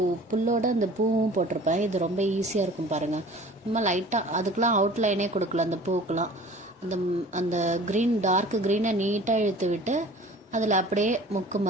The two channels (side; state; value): both; normal; correlation 0.46